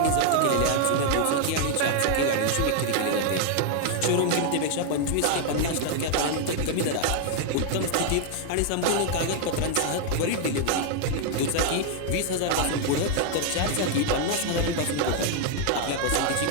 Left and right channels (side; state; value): both; different; correlation 0.00